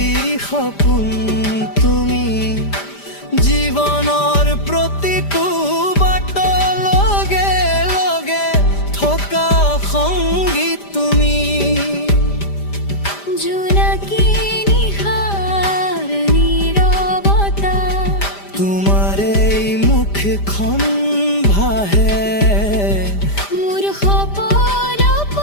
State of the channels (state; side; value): late; right; 5.0 ms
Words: সপোন তুমি জীৱনৰ প্ৰতিটো বাটৰ লগে লগে থকা সংগীত তুমি জোনাকী নিশাৰ নীৰৱতা তোমাৰ এই মুখখন ভাহে মোৰ সপোনৰ